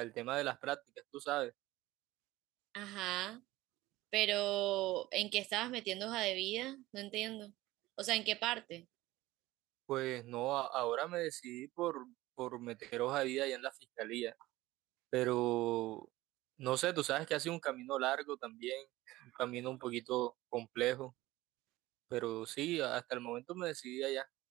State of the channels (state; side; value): quieter; left; 17.7 dB